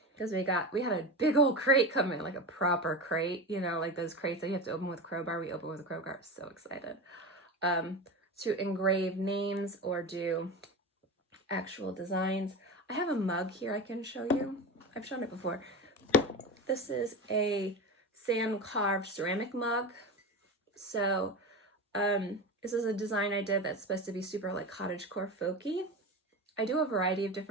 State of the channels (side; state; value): both; normal; correlation 0.24